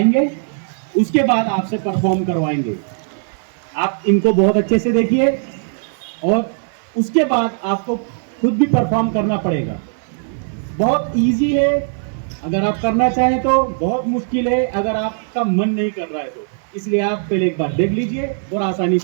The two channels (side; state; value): left; silent; 62 dB below the other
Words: उसके बाद आपसे परफॉर्म करवाएंगे। आप इनको बहुत अच्छे से देखिए और उसके बाद आपको खुद भी परफॉर्म करना पड़ेगा। बहुत इजी है अगर आप करना चाहें तो, बहुत मुश्किल है अगर आपका मन नहीं कर रहा है तो। इसलिए आप पहले एक बार देख लीजिए और आसानी